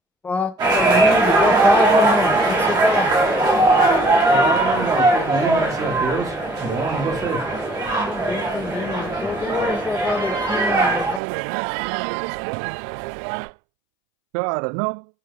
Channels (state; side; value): drops out; left; at 11.2 s